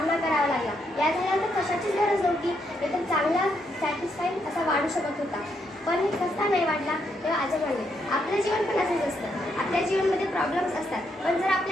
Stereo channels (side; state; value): both; normal; correlation 0.77